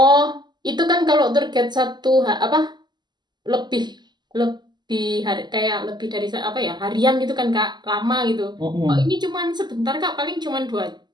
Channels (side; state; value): left; late; 0.21 ms